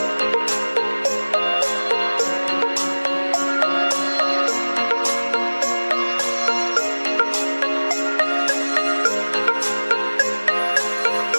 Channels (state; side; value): inverted; both; correlation -1.00